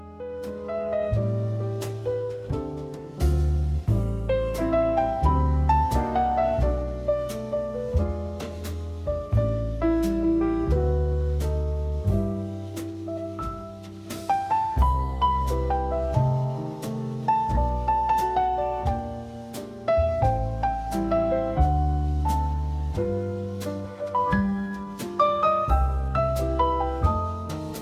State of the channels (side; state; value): both; identical; correlation 1.00